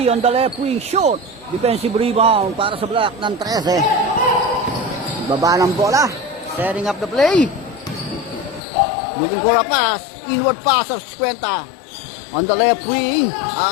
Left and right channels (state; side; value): drops out; right; at 8.6 s